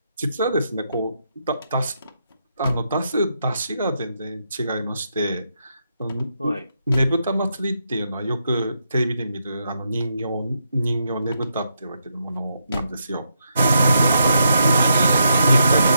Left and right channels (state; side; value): inverted; both; correlation -0.81